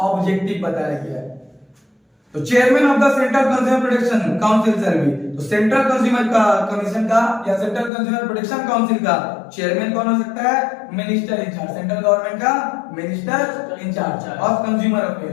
ऑब्जेक्टिव बताया गया है। तो chairman of the central consumer protection council सर्वी, तो सेंट्रल कंज्यूमर का कमीशन का या सेंट्रल कंज्यूमर प्रोटेक्शन काउंसिल का चेयरमैन कौन हो सकता है? मिनिस्टर इंचार्ज, सेंट्रल गवर्नमेंट का minister in charge of consumer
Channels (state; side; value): drops out; right; at 7.9 s